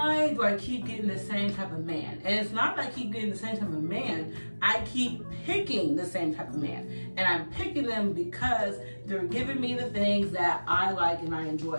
do I keep getting the same type of man? And it's not that I keep getting the same type of man, I keep picking the same type of man. And I'm picking them because they're giving me the things that I like and I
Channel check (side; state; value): both; inverted; correlation -1.00